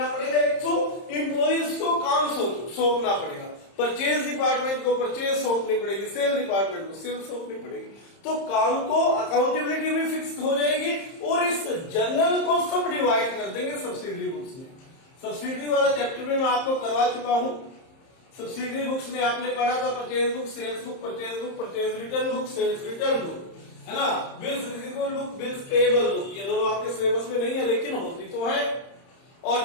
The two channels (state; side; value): late; right; 30 ms